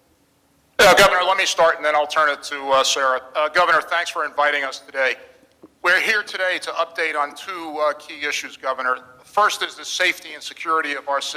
Governor, let me start, and then I'll turn it to Sarah. Governor, thanks for inviting us today. We're here today to update on two key issues, Governor. First is the safety and security of our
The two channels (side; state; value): both; identical; correlation 1.00